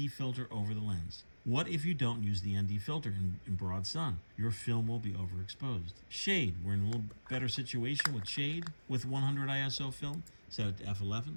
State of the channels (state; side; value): inverted; both; correlation -1.00